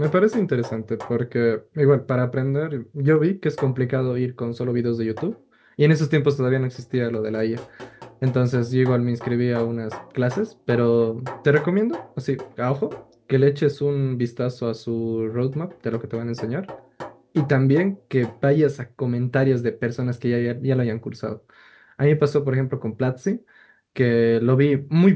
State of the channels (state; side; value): identical; both; correlation 1.00